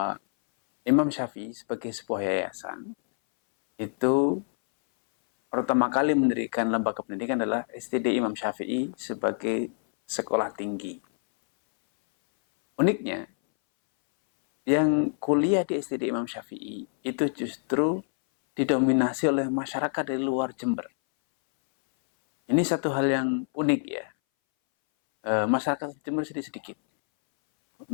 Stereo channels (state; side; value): silent; right; 60 dB below the other